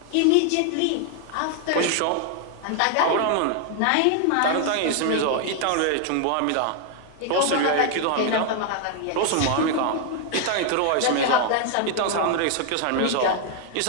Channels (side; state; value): both; different; correlation 0.00